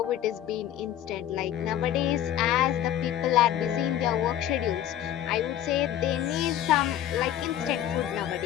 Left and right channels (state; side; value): quieter; right; 11.4 dB